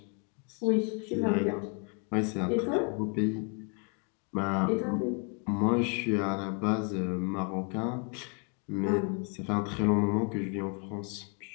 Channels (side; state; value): right; quieter; 36.8 dB